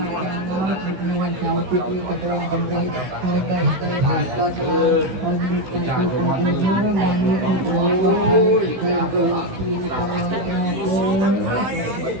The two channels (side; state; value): left; late; 16 ms